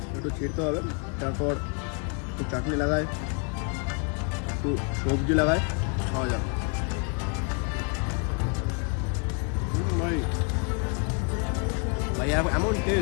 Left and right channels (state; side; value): quieter; right; 36.8 dB